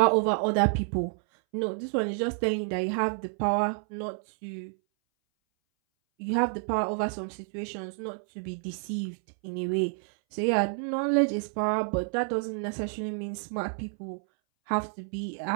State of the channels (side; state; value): left; silent; 59 dB below the other